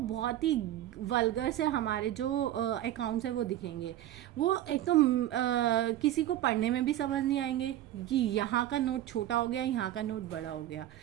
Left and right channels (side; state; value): left; quieter; 13.1 dB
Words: ही वल्गर से हमारे जो अकाउंट्स है वो दिखेंगे। वो एक तो किसी को पढ़ने में भी समझ नहीं आएंगे कि यहाँ का नोट छोटा हो गया, यहाँ का नोट बड़ा हो गया।